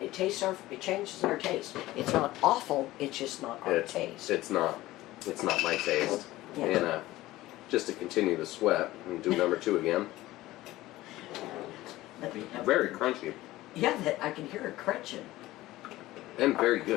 changes our taste. It's not awful, it's just not our taste. It's not my taste. Yeah. And just to continue the sweat and do number 2 again. Very crunchy Yeah, that I can hear it crunching. and very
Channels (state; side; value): quieter; right; 17.0 dB